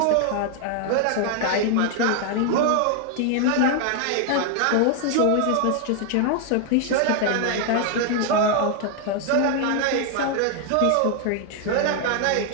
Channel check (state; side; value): different; both; correlation 0.00